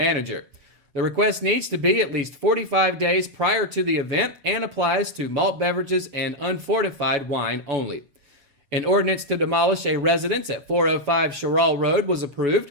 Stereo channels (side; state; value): left; late; 7.0 ms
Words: The request needs to be at least 45 days prior to the event and applies to malt beverages and unfortified wine only. An ordinance to demolish a residence at 405 Sherrall Road was approved.